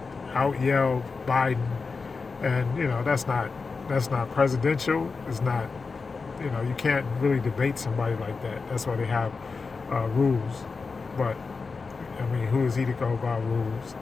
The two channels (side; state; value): right; quieter; 4.5 dB